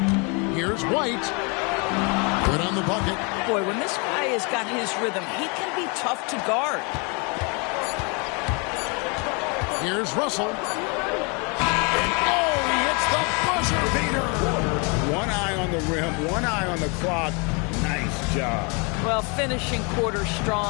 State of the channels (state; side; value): quieter; right; 32.4 dB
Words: Here's White. Good on the bucket. Boy, when this guy has got his rhythm, he can be tough to guard. Here's Russell. And oh, he hits the buzzer beater. One eye on the rim, one eye on the clock. Nice job. Well, finishing quarter